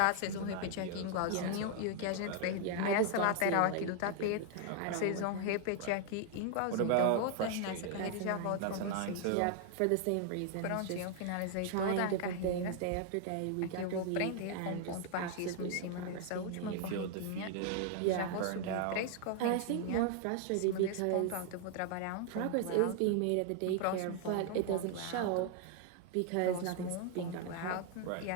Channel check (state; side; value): different; both; correlation 0.00